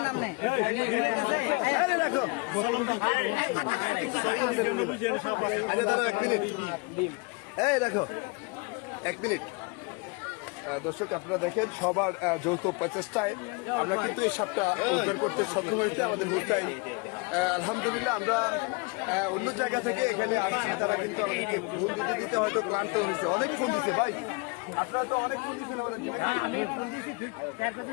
এই দেখো 1 মিনিট দর্শক আপনারা দেখেন সবার যৌথ প্রচেষ্টায় আমরা কিন্তু এই সাপটা উদ্ধার করতে সক্ষম হয়েছে আমাদের মুস্তাই আলহামদুলিল্লাহ আমরা অন্য জায়গা থেকে এখানে আসছি তারা কিন্তু আমাদেরকে ফোন দিতে হয়তো ক্লান্ত হয়েছে অনেক ফোন দিচ্ছে ভাই আপনারা তো অনেক ফোন দিচ্ছেন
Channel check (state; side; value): quieter; right; 29.2 dB